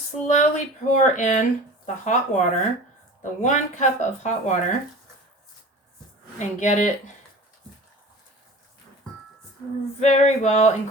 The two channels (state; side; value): normal; both; correlation 0.38